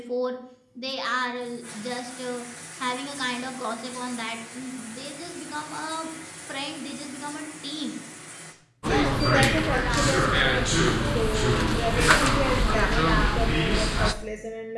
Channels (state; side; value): identical; both; correlation 1.00